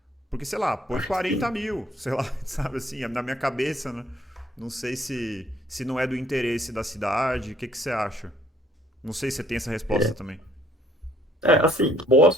Porque, sei lá, põe 40 mil, sei lá, sabe assim, na minha cabeça, né? Não sei se não é do interesse da cidade, o que você acha? Não sei se você tem essa resposta também. Assim,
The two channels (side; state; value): both; normal; correlation 0.62